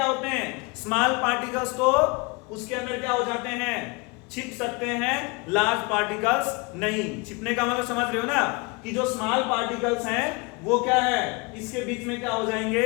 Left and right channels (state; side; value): quieter; right; 28.2 dB